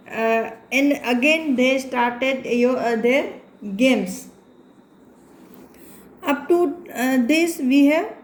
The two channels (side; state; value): both; identical; correlation 1.00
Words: And again, they started their games. Up to this we have